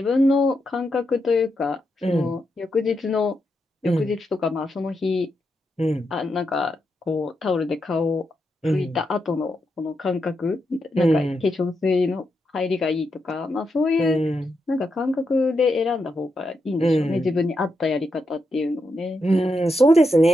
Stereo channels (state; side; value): normal; both; correlation 0.84